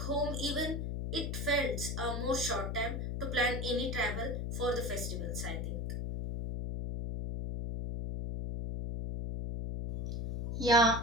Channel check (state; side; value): noise; left; hum, 2 dB below the sound